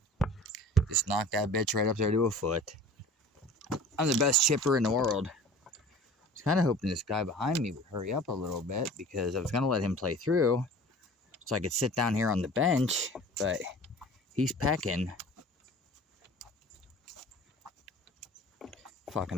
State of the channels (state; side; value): normal; both; correlation 0.42